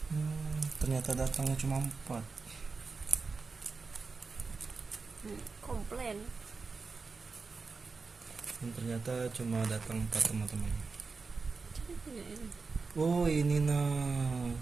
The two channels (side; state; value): left; quieter; 4.4 dB